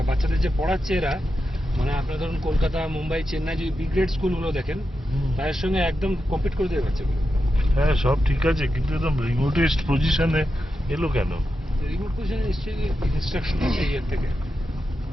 বাচ্চাদের যে পড়াচ্ছে এরা, মানে আপনারা ধরুন কলকাতা, মুম্বাই, চেন্নাই যে বি গ্রেড স্কুলগুলো দেখেন তাদের সঙ্গে একদম কম্পিট করে দেবে বাচ্চাগুলো। হ্যাঁ সব ঠিক আছে, কিন্তু একদম রিমোটেস্ট পজিশনে এলো কেন? রিমোট পজিশনে নিশ্চয়ই ইনস্ট্রাকশন আছে ইয়ের থেকে,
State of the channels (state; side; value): normal; both; correlation 0.89